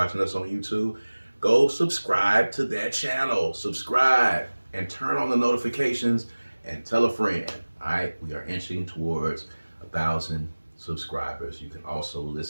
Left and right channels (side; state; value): both; inverted; correlation -1.00